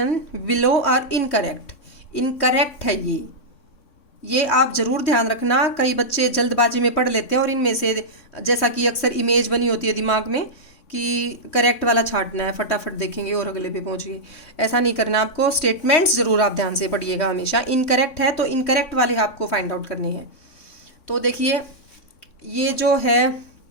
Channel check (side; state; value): right; late; 3.5 ms